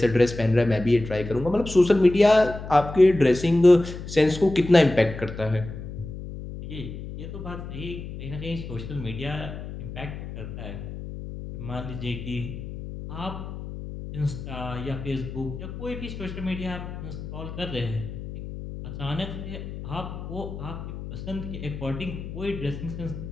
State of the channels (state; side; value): noise; left; hum, 9 dB below the sound